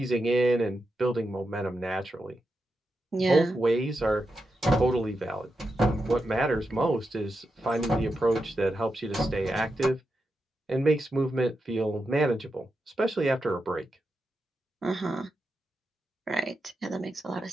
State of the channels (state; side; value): normal; both; correlation 0.87